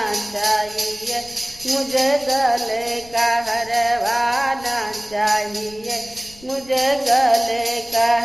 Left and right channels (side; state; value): left; noise; rumble, 23 dB below the sound